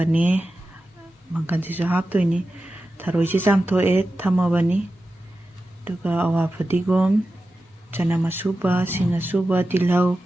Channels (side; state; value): both; normal; correlation 0.93